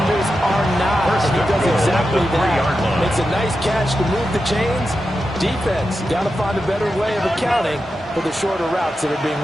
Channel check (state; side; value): normal; both; correlation 0.90